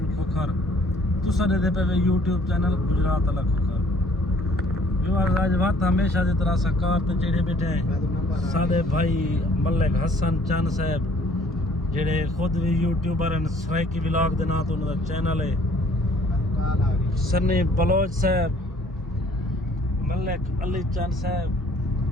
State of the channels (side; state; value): both; normal; correlation 0.58